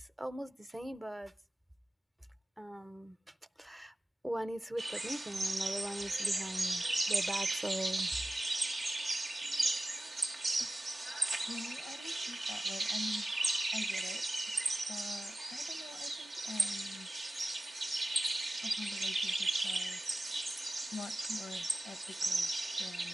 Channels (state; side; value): normal; both; correlation 0.95